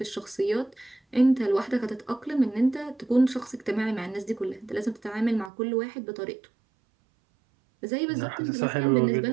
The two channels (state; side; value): drops out; left; at 5.5 s